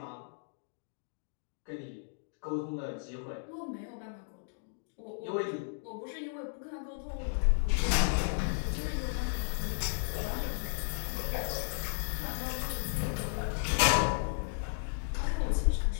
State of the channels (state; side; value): silent; right; digital silence